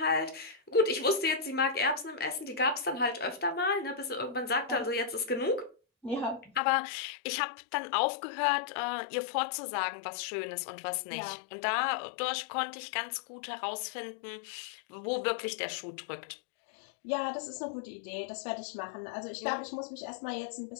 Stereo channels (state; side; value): drops out; right; at 6.6 s